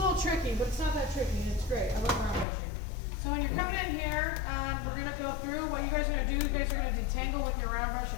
tricky, but it's not that tricky. It's great. I love round brushing. So when you're coming in here, we're going to go through. What you guys are going to do, you guys are going to detangle with your round brush a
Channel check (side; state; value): right; drops out; at 2.5 s